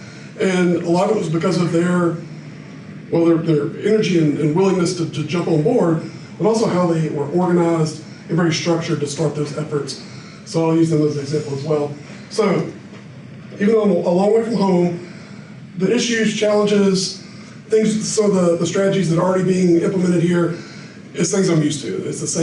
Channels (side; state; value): both; identical; correlation 1.00